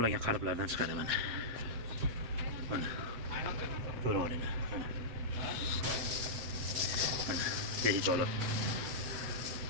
qalblardan chiqadi mana. Mana. Ko'rib olinglar. Mana. Mana. Behijolat.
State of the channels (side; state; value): left; late; 7.7 ms